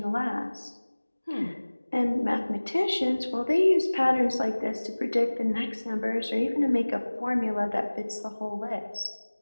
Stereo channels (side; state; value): both; inverted; correlation -1.00